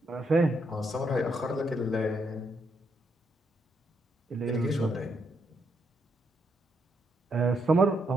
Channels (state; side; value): normal; both; correlation 0.78